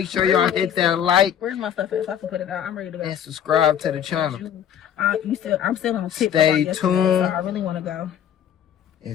sure y'all hit that like. Where's my stuff at so I can put it out? I'm ready to go. And subscribe to the channel. I'm still on tip. Stay tuned. So I really want to go.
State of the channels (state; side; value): quieter; right; 9.5 dB